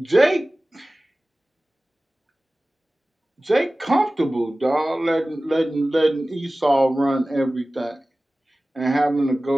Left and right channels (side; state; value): both; normal; correlation 0.97